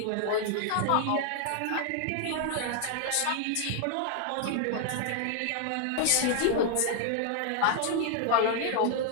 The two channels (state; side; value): different; both; correlation 0.00